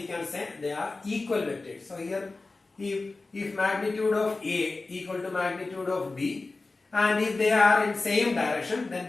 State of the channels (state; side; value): quieter; right; 3.5 dB